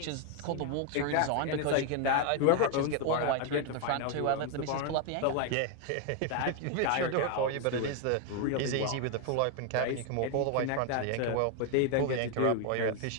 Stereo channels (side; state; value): both; different; correlation 0.01